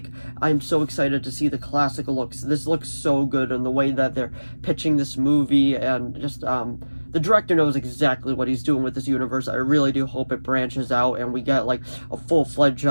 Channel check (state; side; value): inverted; both; correlation -1.00